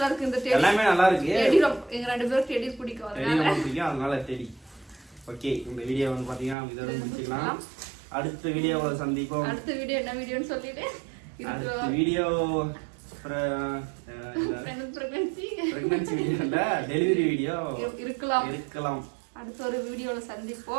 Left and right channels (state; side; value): drops out; left; at 6.6 s